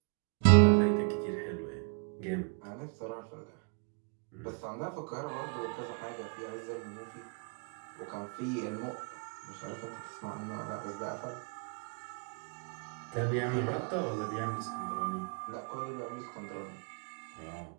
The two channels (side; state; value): left; quieter; 36.8 dB